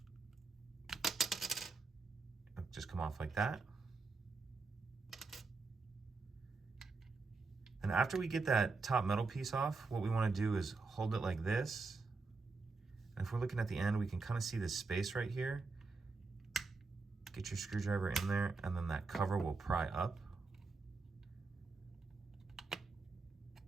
it'll just come off like that. And after we get that top metal piece off, what we want to do is hold it like this. And if we're looking at the end, we can kind of see this space right here. Get your screwdriver in there, and then that cover will pry up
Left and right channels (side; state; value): left; quieter; 4.1 dB